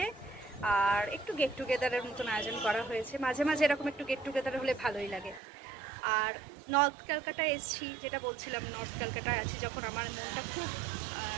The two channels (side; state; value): left; drops out; at 5.4 s